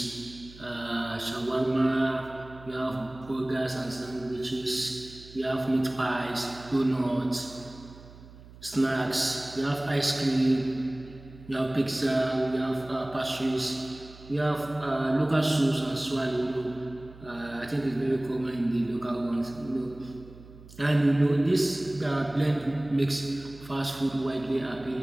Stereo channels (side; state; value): right; noise; hum, 19 dB below the sound